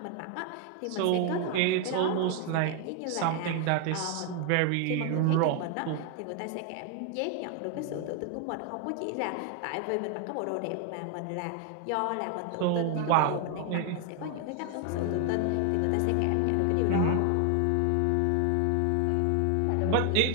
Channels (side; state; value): both; different; correlation 0.01